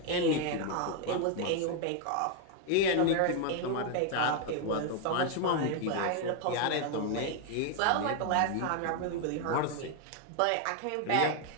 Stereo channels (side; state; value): both; different; correlation 0.01